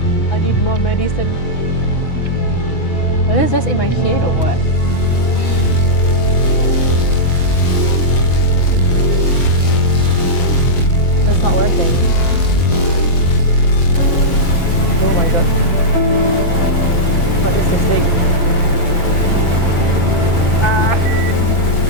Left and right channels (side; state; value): right; late; 7.4 ms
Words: I need more medicine. Is this just in my head or what? That's not working. Oh my god. What is this thing?